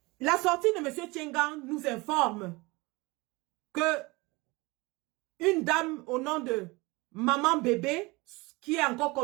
La sortie de M. Tchengan nous informe que une dame au nom de Maman Bébé, qui est encore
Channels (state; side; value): quieter; left; 24.0 dB